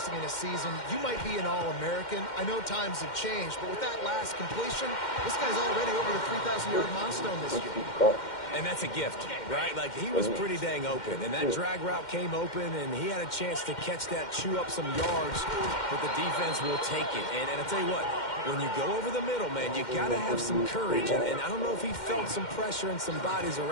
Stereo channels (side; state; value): right; late; 2.1 ms